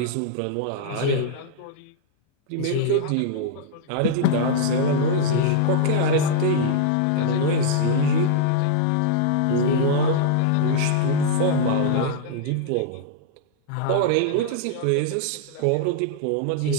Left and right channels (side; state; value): both; different; correlation -0.01